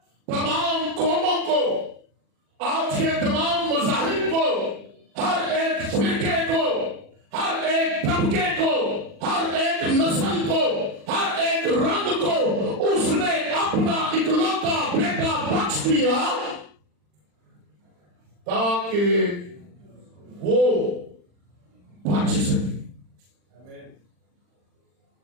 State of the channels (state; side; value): late; left; 40 ms